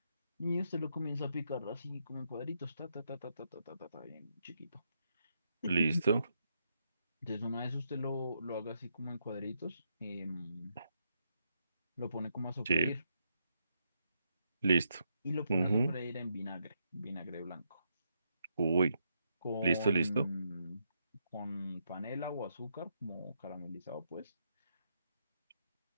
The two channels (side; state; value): both; inverted; correlation -0.79